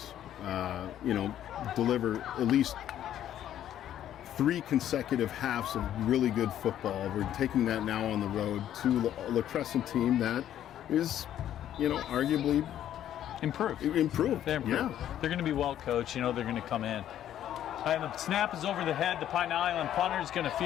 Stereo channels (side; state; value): right; quieter; 11.2 dB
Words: you know, deliver at least 3 consecutive halves of really good football. We're taking that now on the road to a La Crescent team that is, you know, arguably improved. They're improved. They're going to be well coached. You know, they're going to come in. And the snap is over the head. The Pine Island punter is going to